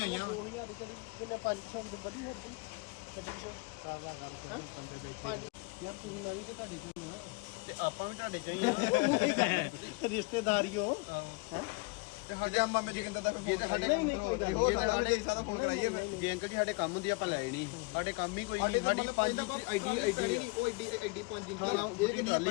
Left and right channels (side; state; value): right; quieter; 27.7 dB